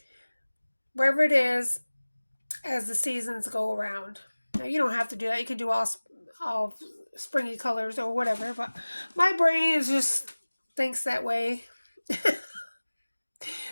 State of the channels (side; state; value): both; inverted; correlation -1.00